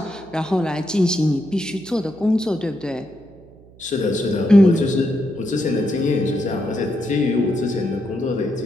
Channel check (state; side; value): noise; right; hum, 24 dB below the sound